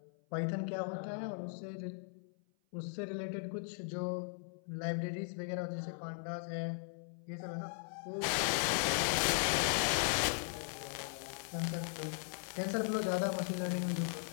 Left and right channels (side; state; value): right; silent; 52 dB below the other